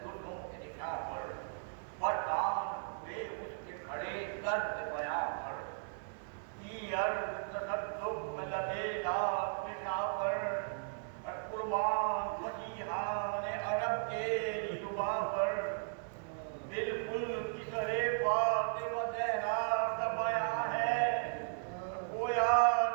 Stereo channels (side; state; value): left; silent; 54 dB below the other